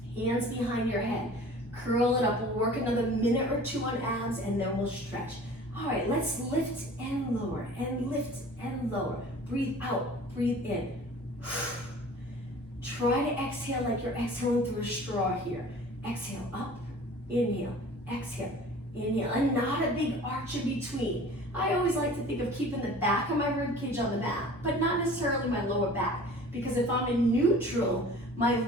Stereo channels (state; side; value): normal; both; correlation 0.45